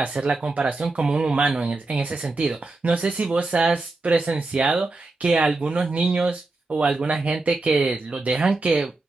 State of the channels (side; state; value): left; quieter; 3.3 dB